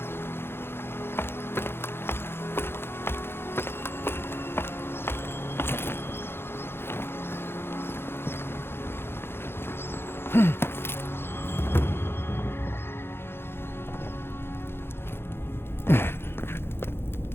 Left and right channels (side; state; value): right; late; 0.11 ms